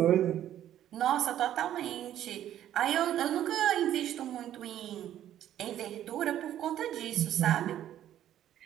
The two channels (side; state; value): left; quieter; 11.6 dB